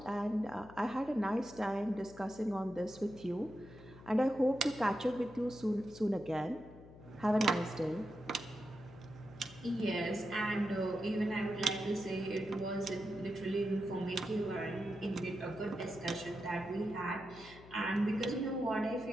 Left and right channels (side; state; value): left; noise; hum, 19 dB below the sound